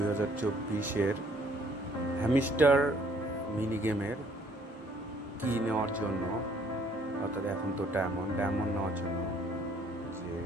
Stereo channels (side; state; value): both; normal; correlation 0.62